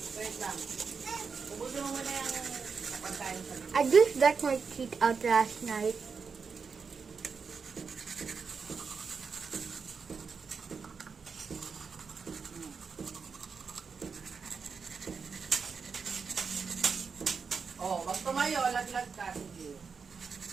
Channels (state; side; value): quieter; left; 5.5 dB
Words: I just got my teeth out last night. Oh, wag tumayo, laglag ka.